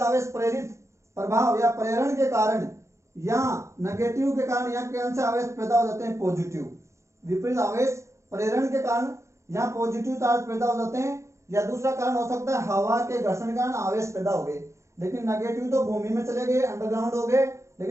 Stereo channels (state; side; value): late; left; 0.14 ms